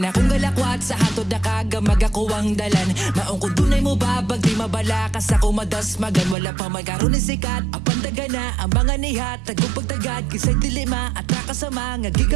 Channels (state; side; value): drops out; left; at 6.4 s